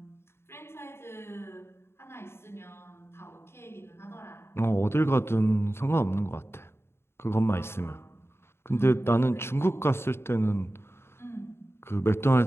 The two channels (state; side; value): late; right; 0.12 ms